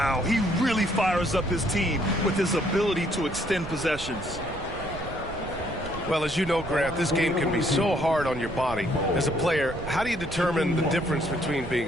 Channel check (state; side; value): noise; right; rumble, 13 dB below the sound